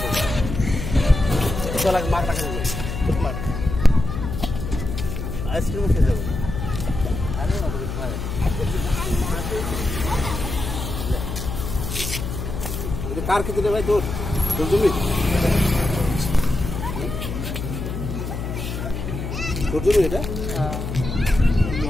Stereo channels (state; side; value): noise; left; hum, 5 dB below the sound